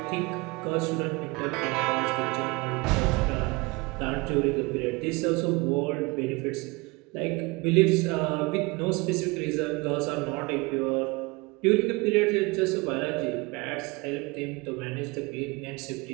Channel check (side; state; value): left; quieter; 25.6 dB